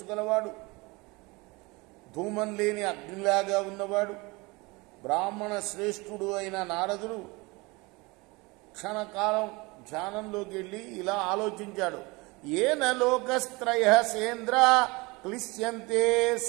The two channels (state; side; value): quieter; left; 25.0 dB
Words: గలవాడు, ధూమం లేని అగ్నిలాగా ఉన్నవాడు, బ్రాహ్మణ శ్రేష్ఠుడు అయిన నారదుడు క్షణకాలం ధ్యానంలోకి వెళ్ళి ఇలా ఆలోచించాడు. ఏన లోకస్త్రయ సేంద్ర క్లిశ్యంతే